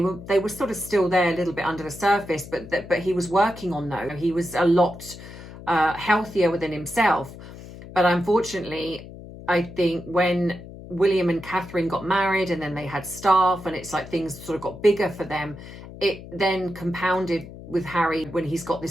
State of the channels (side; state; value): left; noise; hum, 15 dB below the sound